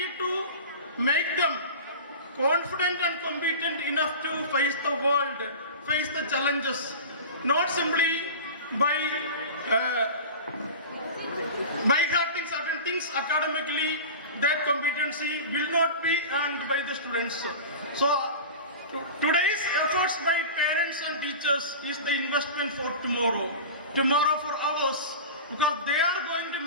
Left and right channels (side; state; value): both; inverted; correlation -0.32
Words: to make them confident and competent enough to face the world, face the challenges, not simply by hearting certain things academically. That competency will not be earned by the students. So today's efforts by parents and teachers is the investment for tomorrow for ours, because they are going to